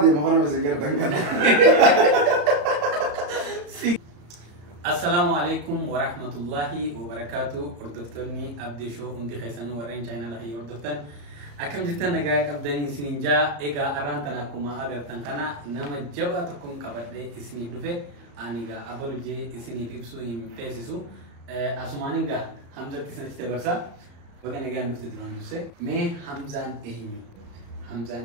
مخانا مسنجر دنگان السلام عليكم ورحمة الله وبركاته أردفتني أبدي شو عندي خيسانو ورين channel هي أردفتن أكم جتا نجاك أبدني سنجا إيجا أرانتنا كوما أجر تنكنا نما جبا تكون كبده إسني بلفه أنيجا أبلو جي إسني بيبسو إم بيسسو أسمانينجا حمزة تسنى تبرسا وكان جا نفط دمان دوسه مي حمزان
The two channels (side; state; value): left; late; 34 ms